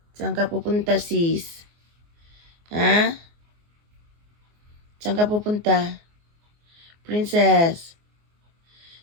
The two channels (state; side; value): late; left; 24 ms